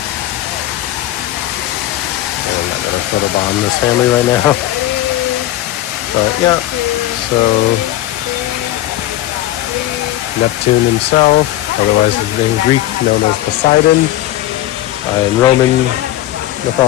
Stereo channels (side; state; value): right; quieter; 14.5 dB